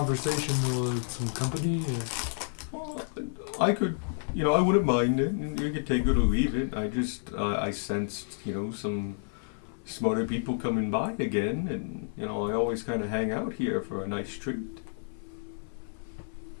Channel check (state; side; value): silent; right; 56 dB below the other